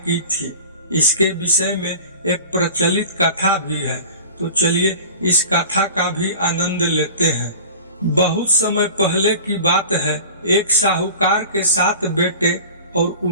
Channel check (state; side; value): inverted; both; correlation -0.39